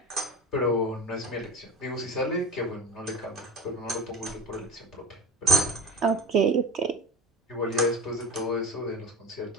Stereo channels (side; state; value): both; normal; correlation 0.33